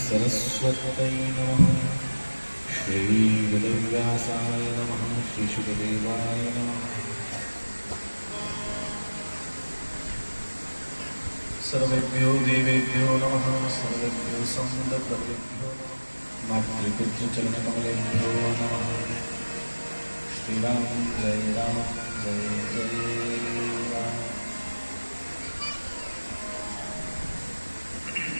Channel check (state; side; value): inverted; both; correlation -1.00